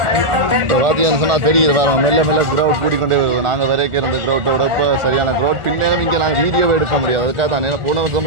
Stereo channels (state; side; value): late; left; 1.4 ms